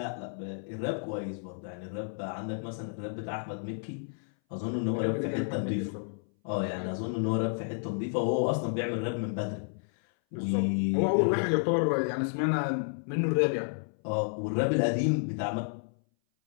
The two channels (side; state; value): right; silent; 57 dB below the other